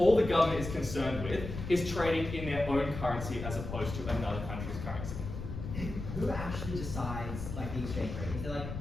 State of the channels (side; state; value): left; noise; rumble, 7 dB below the sound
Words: the government is concerned with is trading in their own currency as opposed to another country's currency. Who actually decides the exchange rate? Is there